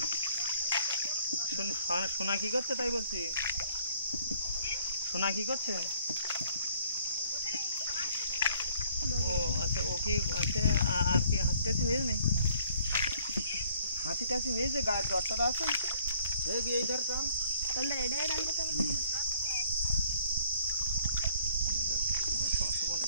সোনা কি করছে তাই বলছি, সোনা কি করছে? ও আচ্ছা, ও কি আচ্ছা, আর কি হাঁচি টাচি হয়েছে নেই? হাঁচি টাচি হয়েছে, গায়ের জ্বরটা আছে এইটার কাম তাহলে এটাই ডালতে হবে।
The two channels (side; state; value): both; inverted; correlation -0.60